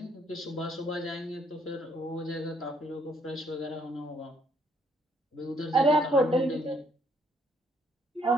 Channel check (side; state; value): both; normal; correlation 0.69